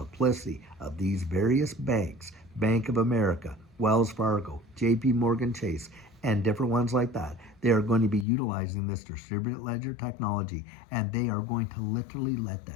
of these various banks, Bank of America, Wells Fargo, JP Morgan Chase, and different ones like that. They are going to be utilizing this distributed ledger technology, and they are going to literally let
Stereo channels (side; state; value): right; drops out; at 8.2 s